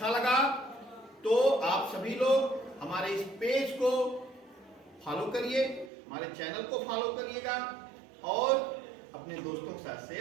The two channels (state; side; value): drops out; left; at 5.9 s